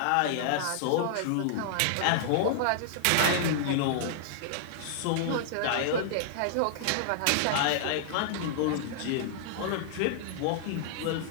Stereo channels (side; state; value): both; different; correlation -0.01